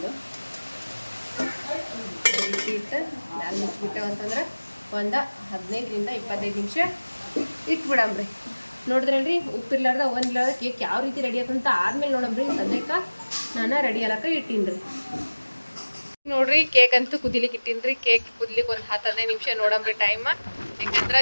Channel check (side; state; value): both; inverted; correlation -1.00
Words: ಈ ರೀತಿ ಇಟ್ಟು ಮ್ಯಾಲೆ ಮುಚ್ಚಿಬಿಟ್ಟೆವು ಅಂತಂದ್ರೆ ಒಂದು 15ರಿಂದ 25 ನಿಮಿಷ ಇಟ್ಬಿಡಮ್ರಿ. ನೋಡಿದ್ರಲ್ರಿ, ಉಪ್ಪಿರ್ಲಾರ್ದ ಒಂದಿಲ್ಲಾರ್ದ ಕೇಕ್ ಯಾವ ರೀತಿ ರೆಡಿ ಆಯ್ತಂತ ಆದ್ಮೇಲೆ ನೋಡಮ್ರಿ. ಸದ್ಯಕ್ಕೆ ನಾನು ರೆಡಿ ಆಲಕ್ಕ ಇಟ್ಟೀನಿ. ನೋಡ್ರಿ, ಕೇಕ್ ಅಂತೂ ಕುದಿಲಿಕ್ಕೆ ಇಟ್ಟೀನಿ. ಕೇಕ್ ಕುದಿಲಿಕ್ಕೆ ಒಂದು 10-15 ನಿಮಿಷ ನೋಡಮ್ರಿ ಟೈಮ್. ಯಾಕಂದ್ರೆ